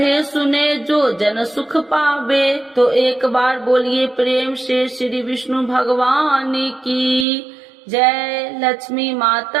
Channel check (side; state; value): left; drops out; at 7.2 s